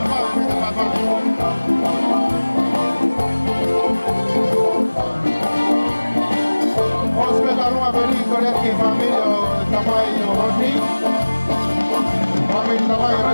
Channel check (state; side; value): inverted; both; correlation -1.00